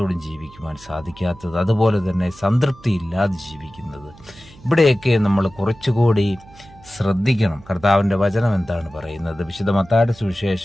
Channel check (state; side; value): noise; right; hum, 23 dB below the sound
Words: ജീവിക്കുവാൻ സാധിക്കാത്തത്, അതുപോലെ തന്നെ സംതൃപ്തി ഇല്ലാതെ ജീവിക്കുന്നത്? ഇവിടെയൊക്കെ നമ്മൾ കുറച്ചുകൂടി ശ്രദ്ധിക്കണം. കർത്താവിൻ്റെ വചനം എന്താണ് പറയുന്നത്? വിശുദ്ധ മത്തായിയുടെ